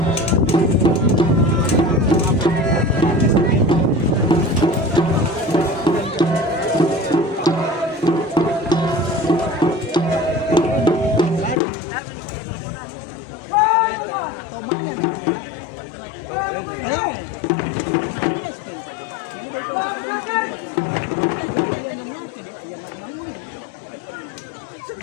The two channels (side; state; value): right; drops out; at 11.6 s